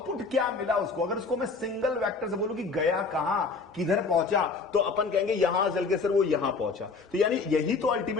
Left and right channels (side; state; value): right; quieter; 4.4 dB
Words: क्या मिला उसको, अगर उसको मैं सिंगल वेक्टर से बोलूं कि गया कहां, किधर पहुंचा, तो अपन कहेंगे यहां चल के सर वो यहां पहुंचा, तो यानी यही तो